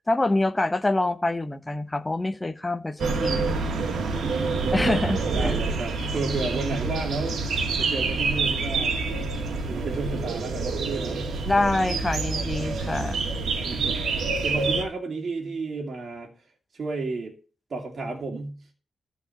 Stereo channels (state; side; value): normal; both; correlation 0.80